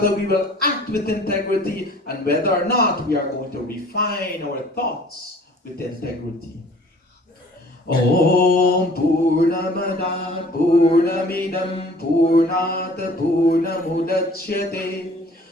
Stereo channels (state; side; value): normal; both; correlation 0.51